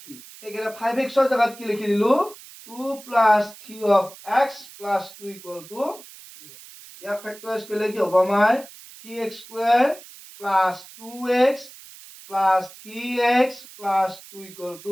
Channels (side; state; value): right; noise; hiss, 19 dB below the sound